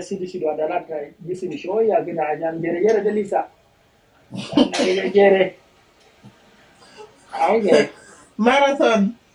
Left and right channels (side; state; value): both; identical; correlation 1.00